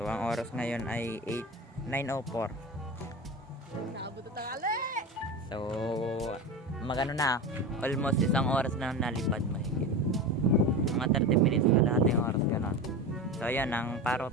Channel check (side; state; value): both; normal; correlation 0.26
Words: ang oras ngayon ay 9:04. Nakabot na tangali. So magano na. Almost isang oras na nalipad mahigit. Mga 30 minutes na lahat yung oras ganun. So ayan ang parot.